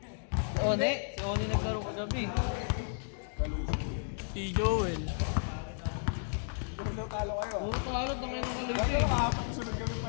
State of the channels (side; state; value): right; silent; digital silence